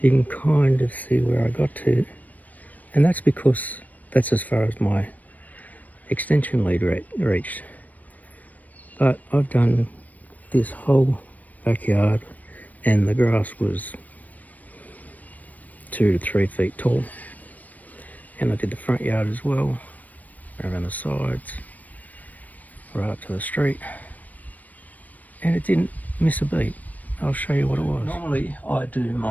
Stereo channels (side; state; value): right; late; 0.077 ms